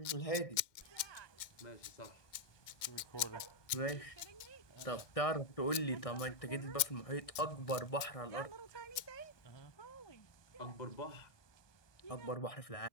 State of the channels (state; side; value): late; right; 2.1 ms